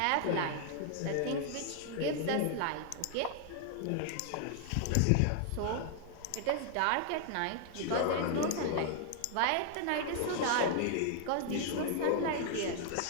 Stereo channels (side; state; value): both; different; correlation 0.00